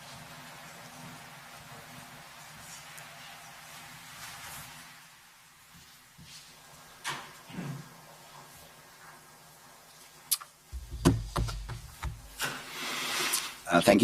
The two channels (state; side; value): identical; both; correlation 1.00